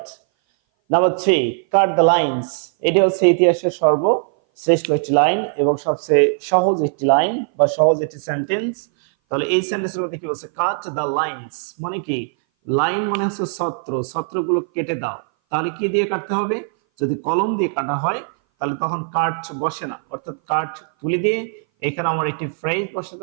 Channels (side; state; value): left; silent; 59 dB below the other